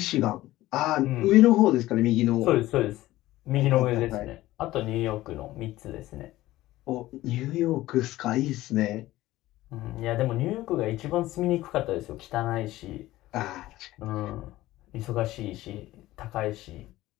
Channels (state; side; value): quieter; right; 16.5 dB